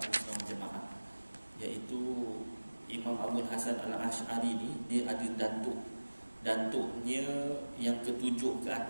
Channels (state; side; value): inverted; both; correlation -1.00